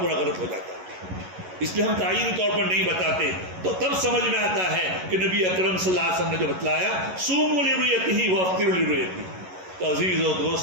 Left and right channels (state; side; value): late; left; 11 ms